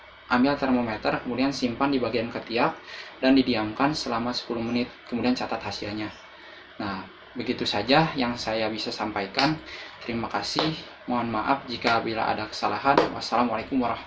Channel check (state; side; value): identical; both; correlation 1.00